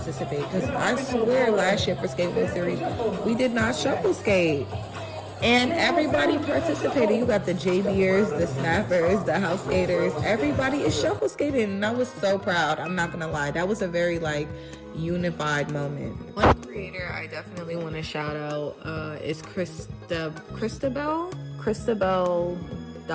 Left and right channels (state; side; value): identical; both; correlation 1.00